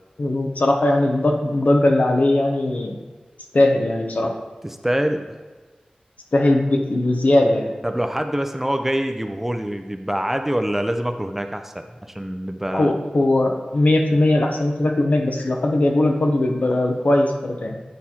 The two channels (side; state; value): both; normal; correlation 0.96